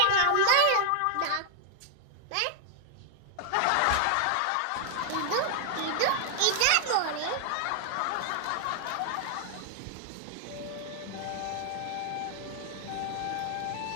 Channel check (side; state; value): both; different; correlation 0.00